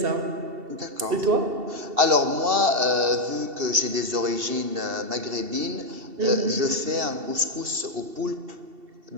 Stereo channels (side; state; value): left; late; 2.7 ms